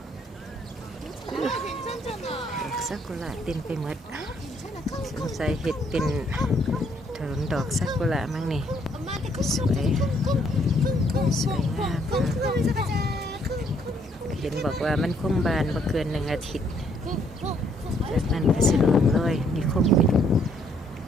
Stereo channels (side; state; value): both; normal; correlation 0.68